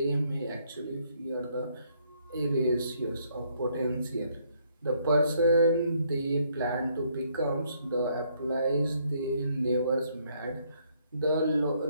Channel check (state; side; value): inverted; both; correlation -0.69